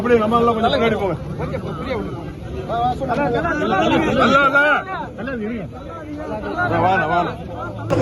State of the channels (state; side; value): identical; both; correlation 1.00